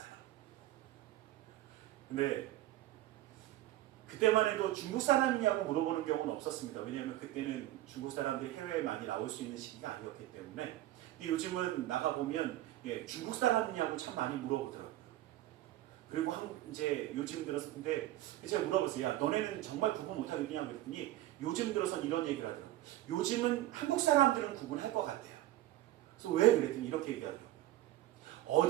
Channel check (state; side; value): quieter; left; 14.9 dB